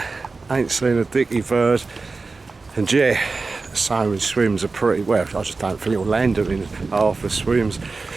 Ain't seen a dicky bird, and yeah, salmon swims are pretty well. I just don't think it'll land them in half the swims.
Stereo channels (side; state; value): left; quieter; 3.9 dB